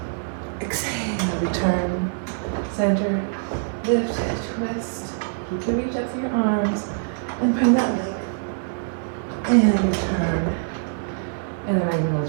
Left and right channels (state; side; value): silent; left; 63 dB below the other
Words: Exhale, return. Center. Lift, twist. Keep the reach up for your arms. And bring that leg. And return. And then I'm